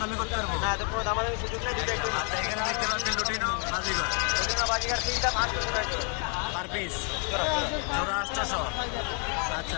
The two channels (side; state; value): right; quieter; 38.8 dB